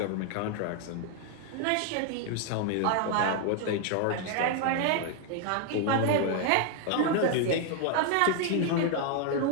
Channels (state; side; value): different; both; correlation 0.00